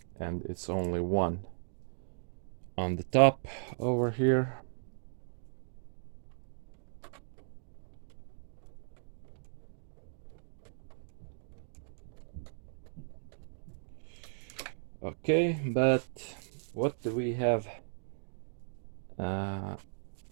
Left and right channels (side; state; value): left; silent; digital silence